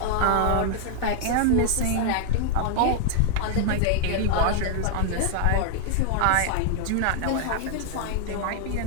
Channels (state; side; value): different; both; correlation 0.00